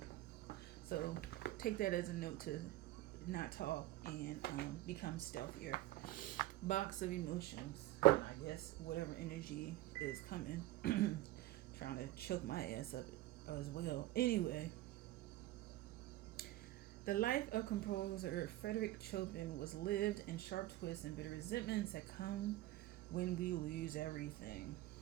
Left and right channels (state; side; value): quieter; left; 16.1 dB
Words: So take that as a note to not talk and become stealthier. Box of emotions. And I guess whatever energy is coming, trying to choke my ass up as well. Anyway, the life of composer Frederick Chopin was lived in sharp twists and bitter resentments that come when we lose everything.